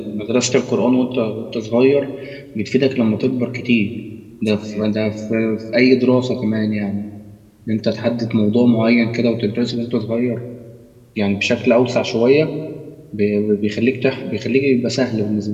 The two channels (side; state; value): both; identical; correlation 1.00